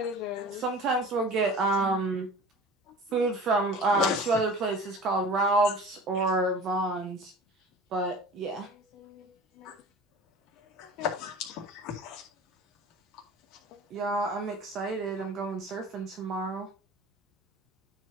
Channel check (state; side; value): normal; both; correlation 0.40